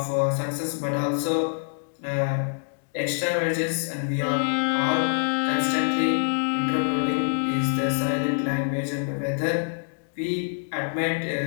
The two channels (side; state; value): right; silent; digital silence